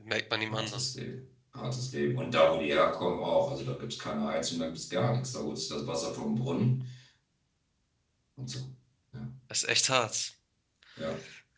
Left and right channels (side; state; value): both; identical; correlation 1.00